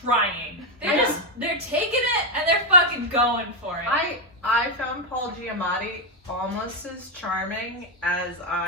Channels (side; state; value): both; normal; correlation 0.04